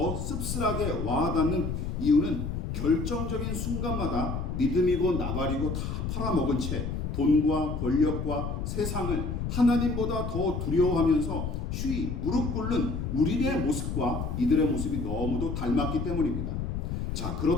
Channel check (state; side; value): noise; left; rumble, 3 dB below the sound